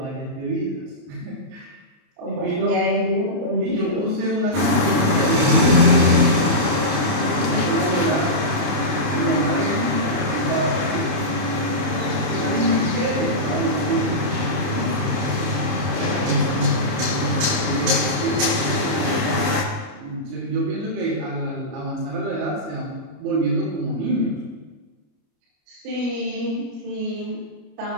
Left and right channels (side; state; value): left; late; 30 ms